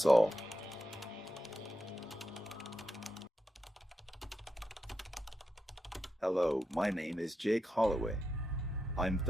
all. Hello, my name is Jake Holloway. I'm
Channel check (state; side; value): normal; both; correlation 0.87